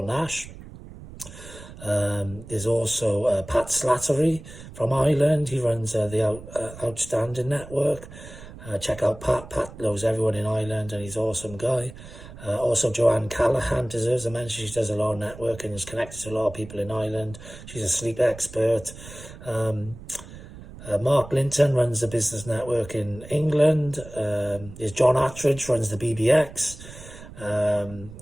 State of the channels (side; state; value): right; noise; rumble, 16 dB below the sound